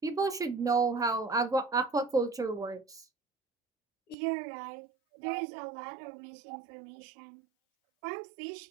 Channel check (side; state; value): left; drops out; at 4.2 s